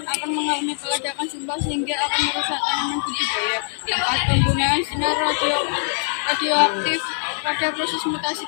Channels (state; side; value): silent; right; digital silence